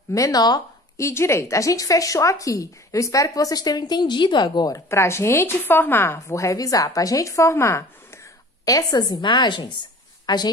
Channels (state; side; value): normal; both; correlation 0.44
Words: menor e direita. A gente fechou aqui. Eu espero que vocês tenham entendido agora. Para a gente formar, vou revisar, para a gente formar essas imagens, a